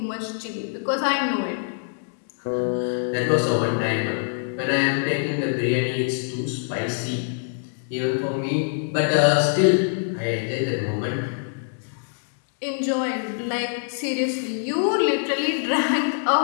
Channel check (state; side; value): silent; right; digital silence